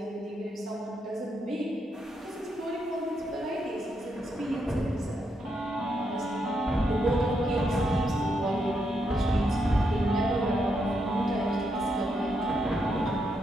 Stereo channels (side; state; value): both; normal; correlation 0.80